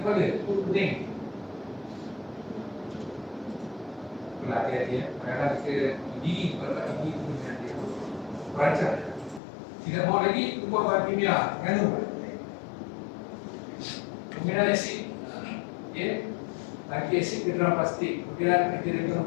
itu pening. Itulah hati-hati ya. Kadang-kadang kita gigi, kalau gigi itu hati-hati. Perancang. Tidak mau lagi, ubah bahan kimia. Nganu. Penggunaan asid. Lagi asid ke dalam plastik. Kemudian kita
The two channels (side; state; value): right; drops out; at 9.4 s